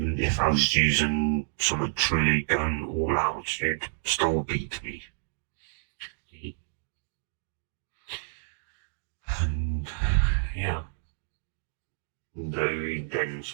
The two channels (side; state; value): left; silent; digital silence